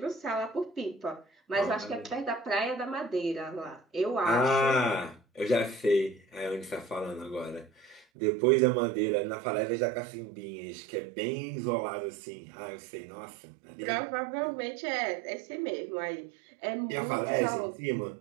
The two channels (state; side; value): drops out; left; at 8.1 s